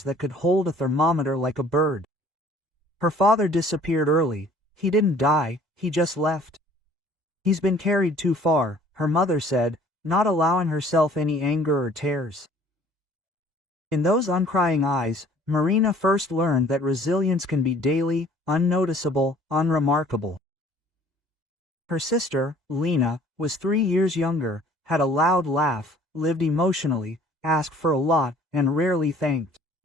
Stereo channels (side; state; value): left; late; 2.0 ms